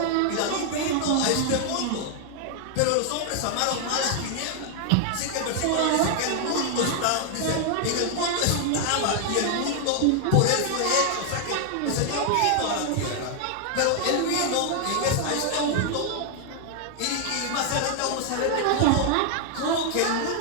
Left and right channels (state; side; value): different; both; correlation 0.00